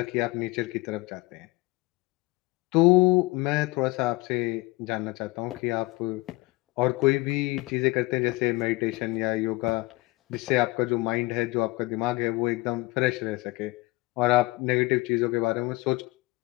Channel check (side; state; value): right; quieter; 22.7 dB